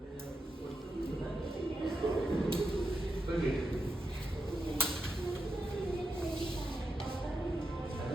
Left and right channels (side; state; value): both; normal; correlation 0.86